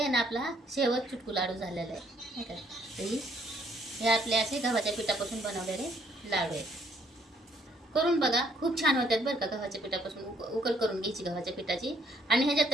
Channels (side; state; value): both; normal; correlation 0.66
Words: ना आपला शेवट चुटकू लाडू झालेला आहे नाही का. हे आपले असे गव्हाच्या पिठापासून बनवलेले लाडू आहेत. करून बघा, खूप छान होतात बरं का. गव्हाच्या पिठापासून उकल करून घ्यायची गव्हाच्या पिठाची. आणि ह्याच्यात